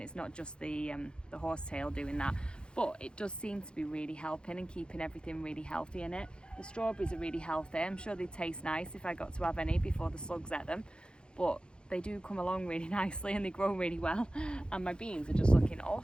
It's not just the horsetail doing that, but it does seem to be really helping and keeping everything really healthy in it. The strawberries are really healthy. I'm sure they taste nice if I got to have any before the slugs ate them, but they do come along really nicely and they grow really well, and my beans are just looking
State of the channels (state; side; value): late; right; 0.052 ms